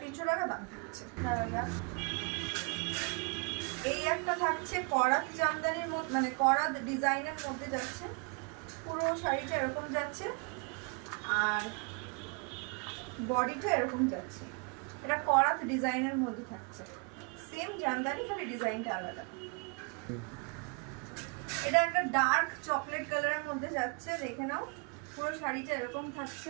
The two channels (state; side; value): quieter; left; 34.9 dB